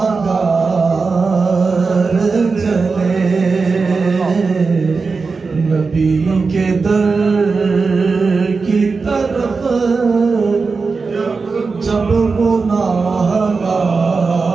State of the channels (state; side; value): quieter; left; 4.5 dB